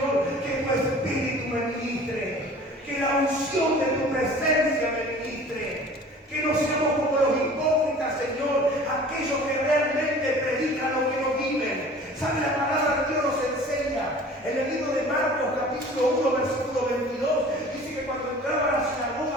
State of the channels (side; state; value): both; normal; correlation 0.45